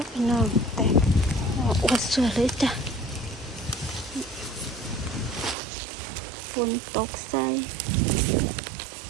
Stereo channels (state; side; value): drops out; left; at 5.6 s